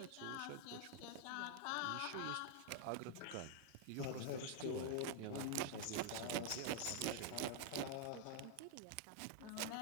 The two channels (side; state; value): both; different; correlation -0.01